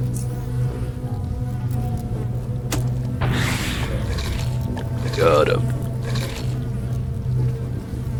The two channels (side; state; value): both; identical; correlation 1.00